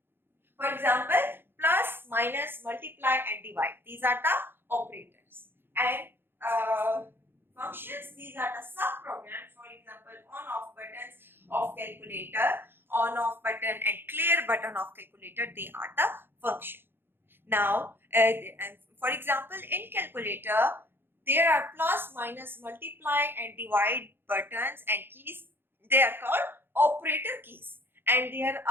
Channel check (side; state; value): left; late; 0.10 ms